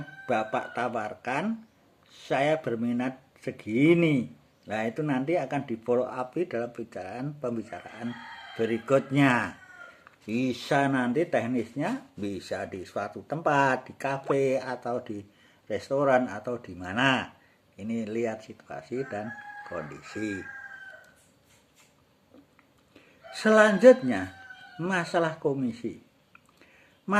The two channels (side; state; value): both; identical; correlation 1.00